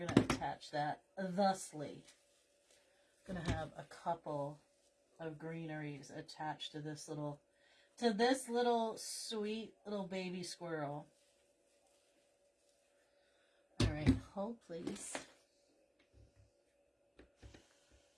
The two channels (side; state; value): both; identical; correlation 1.00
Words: to attach that thusly. Going to have a couple of greeneries attached to this little sweet little baby squirrel. All right, hold please.